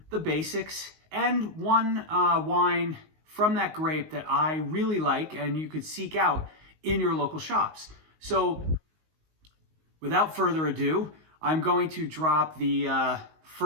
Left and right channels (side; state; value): left; late; 19 ms